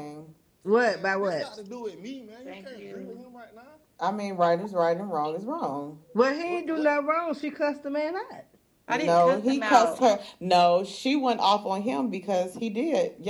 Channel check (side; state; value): both; identical; correlation 1.00